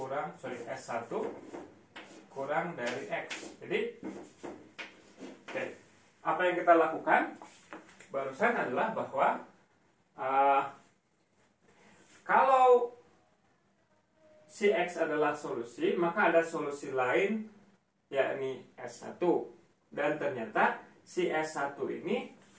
S1 kurang dari X. Jadi apa yang kita lakukan barusan adalah bahwa kalau si X adalah solusi, maka ada solusi lain, yakni S1. Dan ternyata si S1 ini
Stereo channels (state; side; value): identical; both; correlation 1.00